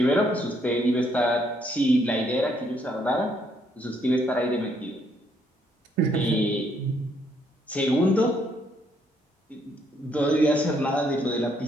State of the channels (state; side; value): normal; both; correlation 0.71